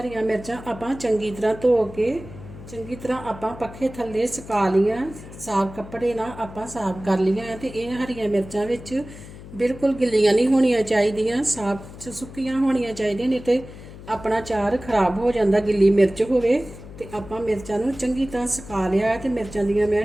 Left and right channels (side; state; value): left; noise; hum, 15 dB below the sound